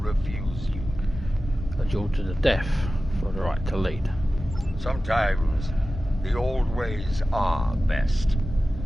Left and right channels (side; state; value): both; normal; correlation 0.95